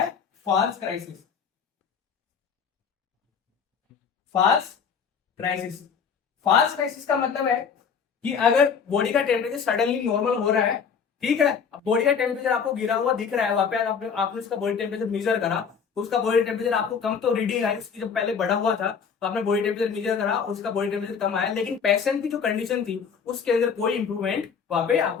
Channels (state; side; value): quieter; right; 6.5 dB